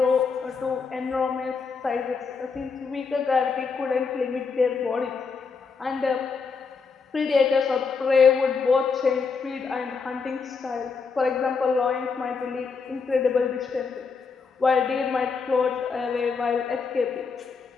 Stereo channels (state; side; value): quieter; right; 5.1 dB